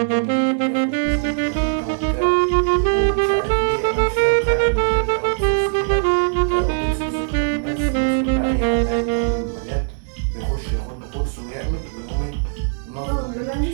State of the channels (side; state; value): left; silent; digital silence